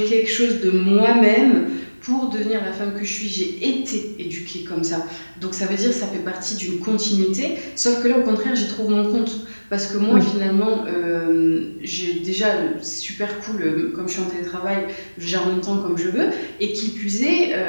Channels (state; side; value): inverted; both; correlation -1.00